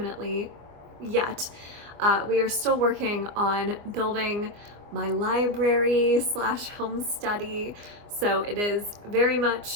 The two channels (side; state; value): left; late; 24 ms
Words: yet. We are still working on building my library / home study. So it is very